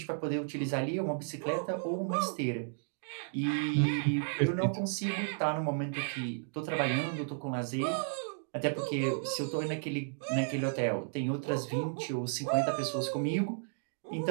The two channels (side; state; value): left; silent; digital silence